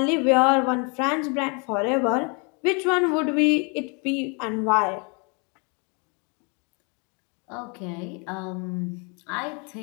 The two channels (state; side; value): quieter; right; 33.6 dB